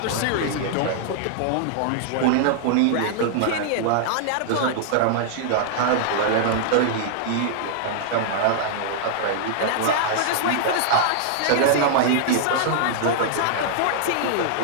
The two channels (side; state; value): both; different; correlation -0.01